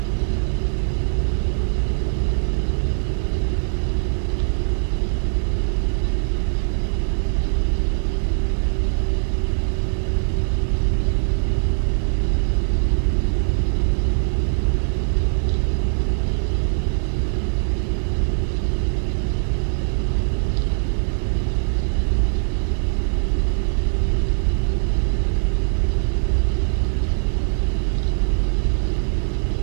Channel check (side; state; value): left; silent; digital silence